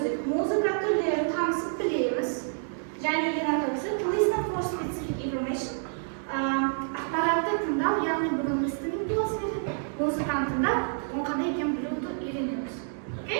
музыка түрлерін танысып білеміз. Және ең ақырғысы, to listen for specific information. Ақпаратты тыңдау, яғни бүгін listening болсын еді, музыканы тыңдап, оның қандай екенін білуді үйренеміз.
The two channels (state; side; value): silent; left; digital silence